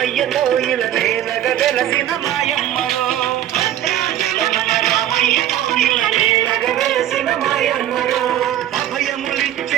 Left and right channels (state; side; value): quieter; left; 12.0 dB